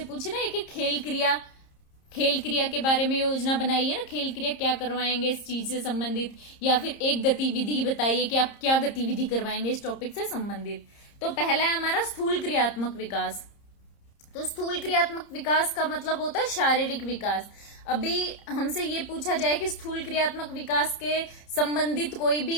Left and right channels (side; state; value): right; late; 30 ms